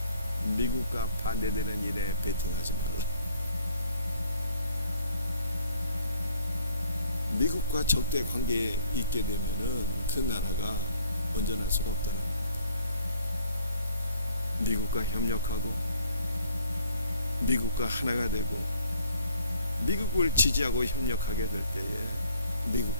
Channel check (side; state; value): both; inverted; correlation -0.60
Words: 미국과 반대되는 일에 베팅하지 말라. 미국과 적대 관계에 있게 되면은 그 나라가 온전할 수가 없다는 거예요. 미국과 협력하고 미국과 하나가 되고 미국을 지지하고 협력하게 될 때에